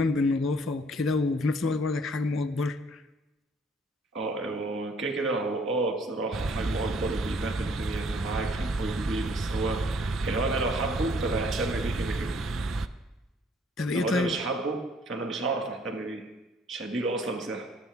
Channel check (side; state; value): both; normal; correlation 0.60